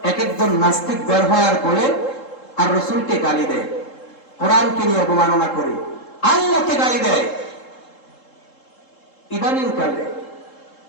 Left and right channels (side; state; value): right; late; 3.7 ms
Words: এক একজন নাস্তিক বের হয় আর বলে আর রসুলকে গালি দেয়, কোরআনকে নিয়ে অবমাননা করে, আল্লাহকে গালি দেয়। ইদানিং কালে